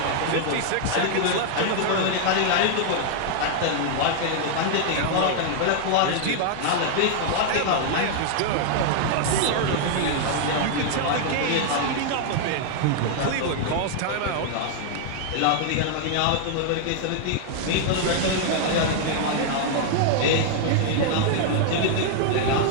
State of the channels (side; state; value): both; different; correlation 0.00